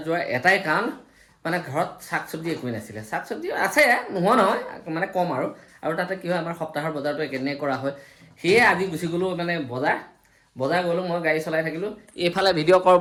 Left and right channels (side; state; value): both; identical; correlation 1.00